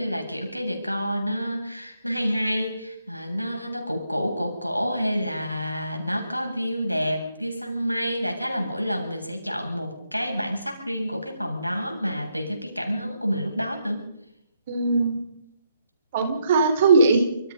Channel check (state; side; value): inverted; both; correlation -0.78